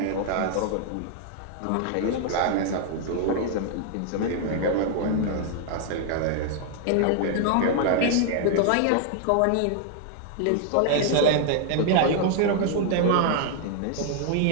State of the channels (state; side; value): different; both; correlation 0.00